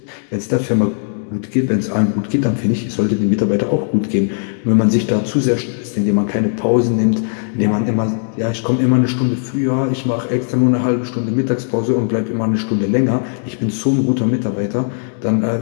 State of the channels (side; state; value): right; silent; digital silence